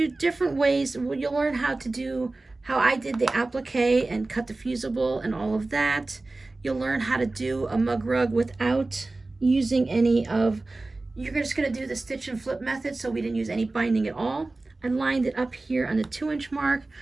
different ways. You'll learn how to do, how I did the applique and cut the fusible and all of that. You'll learn how to do a mug rug without using any of, you're just going to do the stitch and flip method, so we didn't use any binding at all. I lined it up here on the 2-inch mark.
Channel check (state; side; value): quieter; left; 3.2 dB